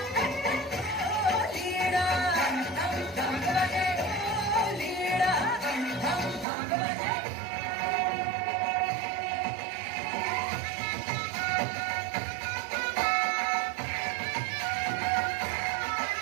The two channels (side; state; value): left; drops out; at 6.5 s